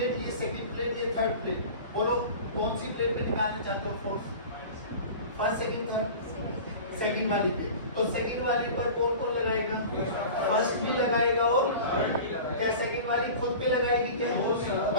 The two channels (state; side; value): inverted; both; correlation -0.37